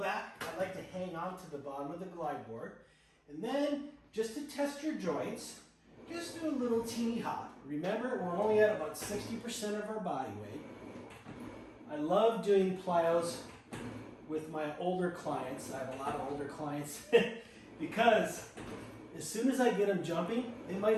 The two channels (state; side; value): identical; both; correlation 1.00